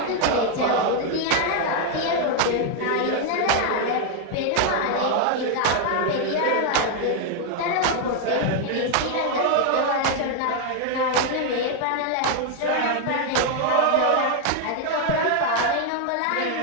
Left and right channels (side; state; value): both; different; correlation 0.00